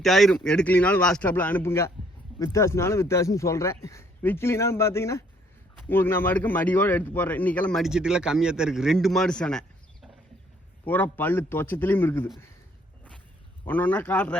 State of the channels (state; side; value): normal; both; correlation 0.64